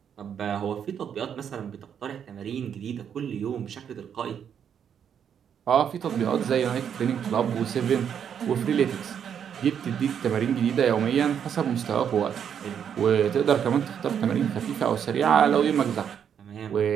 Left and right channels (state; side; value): quieter; left; 8.2 dB